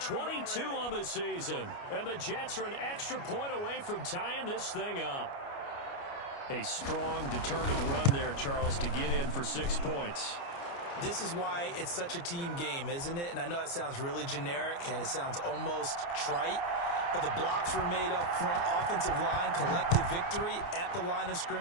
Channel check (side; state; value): right; late; 29 ms